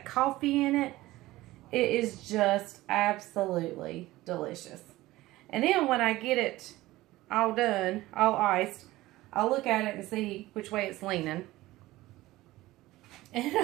coffee in it. It is just absolutely delicious. And then when I get it all done, all iced, I'll look at it and see which way it's leaning. And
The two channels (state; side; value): quieter; left; 17.7 dB